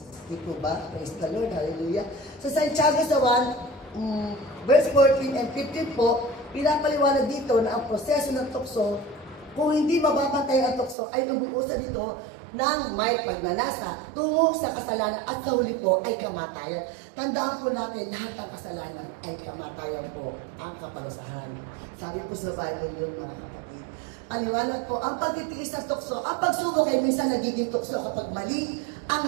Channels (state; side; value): drops out; left; at 11.0 s